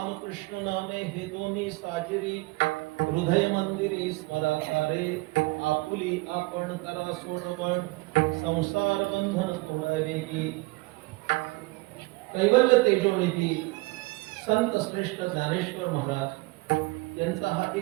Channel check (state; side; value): quieter; left; 24.0 dB